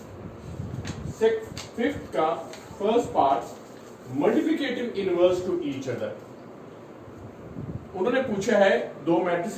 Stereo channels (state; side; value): identical; both; correlation 1.00